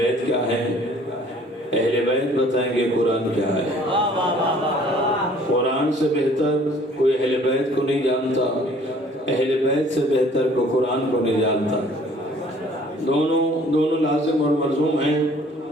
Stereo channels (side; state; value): both; normal; correlation 0.55